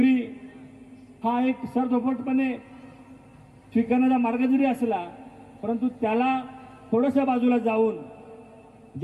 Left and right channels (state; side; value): identical; both; correlation 1.00